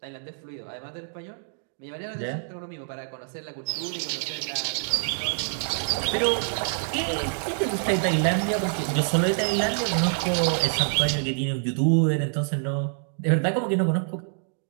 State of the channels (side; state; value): left; silent; digital silence